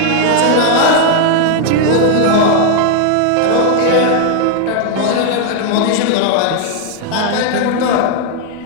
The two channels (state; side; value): different; both; correlation 0.00